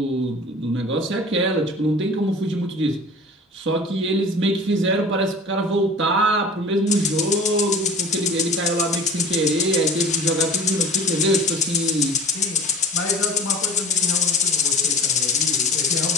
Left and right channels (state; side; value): normal; both; correlation 0.41